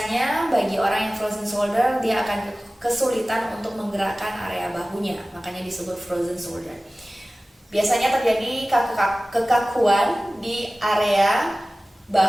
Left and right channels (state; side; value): normal; both; correlation 0.97